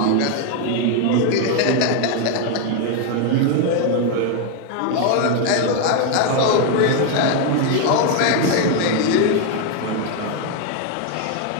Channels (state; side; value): different; both; correlation 0.01